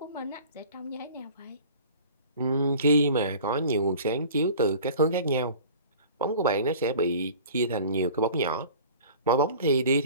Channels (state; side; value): inverted; both; correlation -0.44